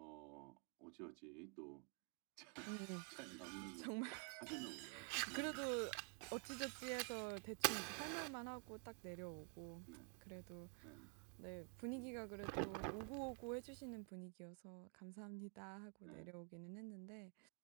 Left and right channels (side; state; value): left; quieter; 39.9 dB